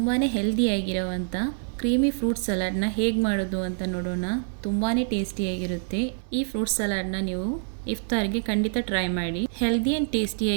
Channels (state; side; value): silent; left; digital silence